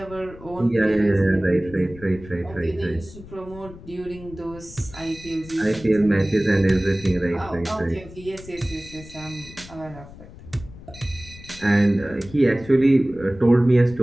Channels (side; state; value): left; noise; rumble, 17 dB below the sound